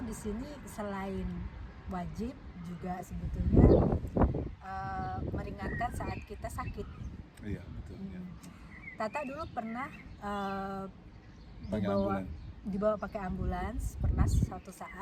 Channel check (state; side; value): identical; both; correlation 1.00